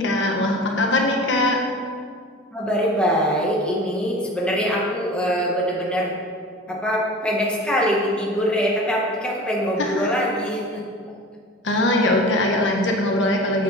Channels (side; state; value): both; normal; correlation 0.37